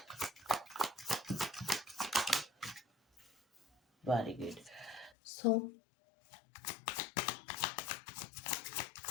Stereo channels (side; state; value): right; drops out; at 5.2 s